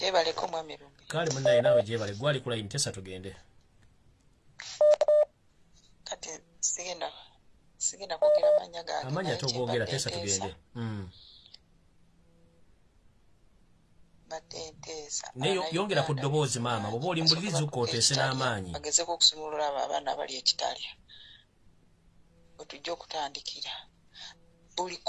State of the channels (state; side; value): identical; both; correlation 1.00